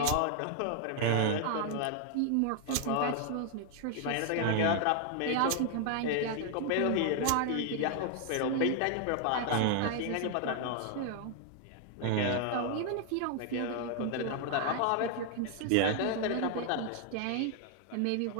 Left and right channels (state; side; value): different; both; correlation 0.00